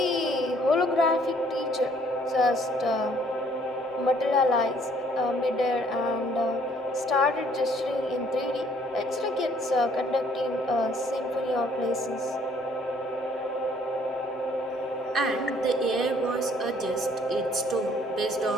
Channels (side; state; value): both; normal; correlation 0.62